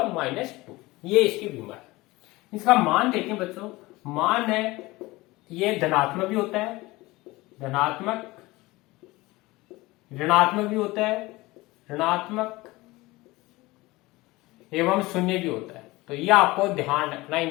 -2, ये इसकी विमा है। इसका मान देखें बच्चों, मान है ये धनात्मक भी होता है, धनात्मक, ऋणात्मक भी होता है, ऋणात्मक एवं शून्य भी होता है। तो ये आपको ध्यान रखना,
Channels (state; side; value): quieter; right; 20.6 dB